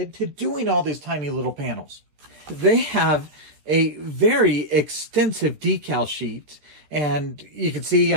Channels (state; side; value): late; left; 14 ms